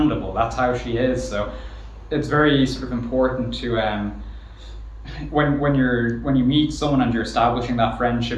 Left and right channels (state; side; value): identical; both; correlation 1.00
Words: That's how she is. So it's very sort of important to when you meet someone and you're establishing that friendship,